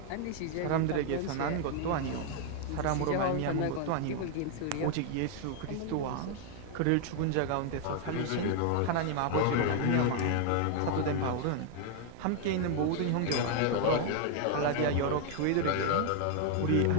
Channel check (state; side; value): different; both; correlation 0.00